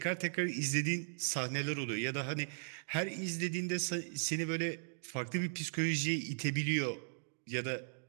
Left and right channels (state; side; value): silent; left; digital silence